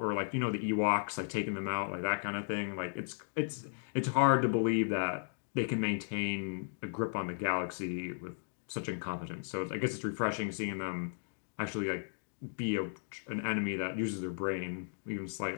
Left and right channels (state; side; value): silent; right; digital silence